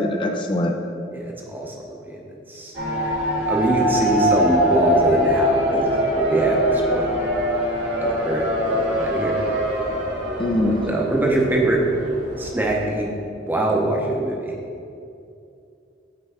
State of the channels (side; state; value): both; normal; correlation 0.32